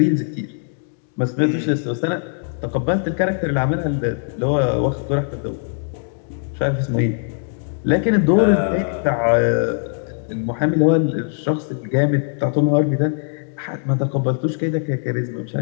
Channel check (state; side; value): silent; right; 65 dB below the other